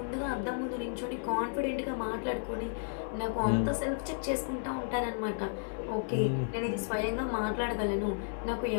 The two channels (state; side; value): silent; right; digital silence